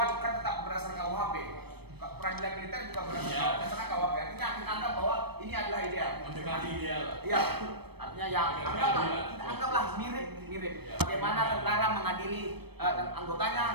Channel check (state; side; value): late; left; 0.97 ms